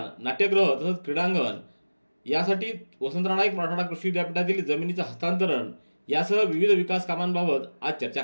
नाट्यगृह तसंच क्रीडांगण यासाठी वसंतराव नाईक मराठवाडा कृषी विद्यापीठातील जमिनीचं हस्तांतरण यासह विविध विकास कामांबाबत आज चर्चा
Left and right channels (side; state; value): both; inverted; correlation -1.00